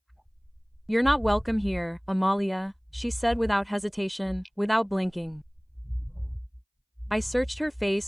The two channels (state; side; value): identical; both; correlation 1.00